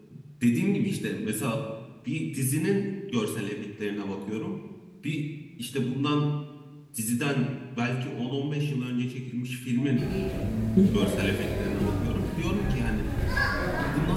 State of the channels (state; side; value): identical; both; correlation 1.00